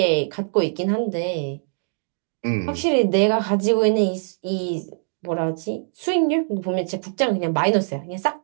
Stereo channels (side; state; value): left; silent; digital silence